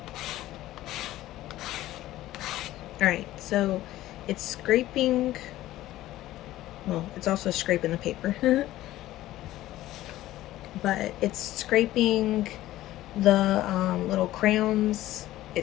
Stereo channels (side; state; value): right; quieter; 15.2 dB